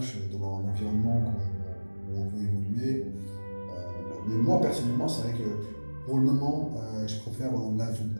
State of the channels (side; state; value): both; inverted; correlation -1.00